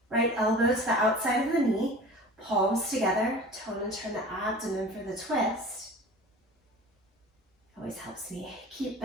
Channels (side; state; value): both; normal; correlation 0.39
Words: right elbow to the outside of the knee, palms together, tone and turn the abdomen for the twist. Always helps me keep